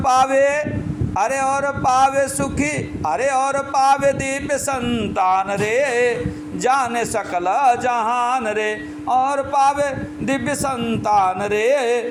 अरे और पावे सुखी, अरे और पावे दिव्य संतान रे, जाने सकल जहान रे। और पावे दिव्य संतान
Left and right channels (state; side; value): identical; both; correlation 1.00